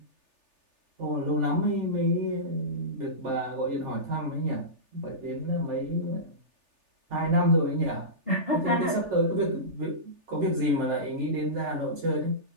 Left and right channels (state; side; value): late; left; 3.4 ms